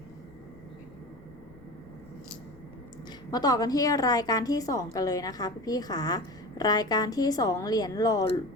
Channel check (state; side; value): noise; left; rumble, 24 dB below the sound